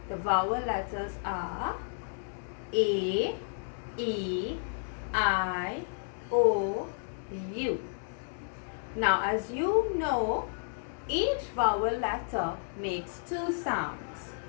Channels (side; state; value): right; silent; digital silence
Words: The vowel letters are A, E, I, O, U. Now as you know, each vowel letter makes two sounds.